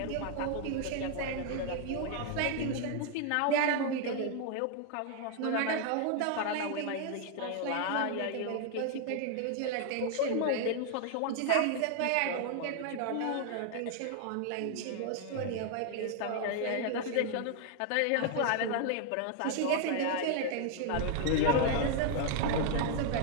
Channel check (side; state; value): both; different; correlation 0.00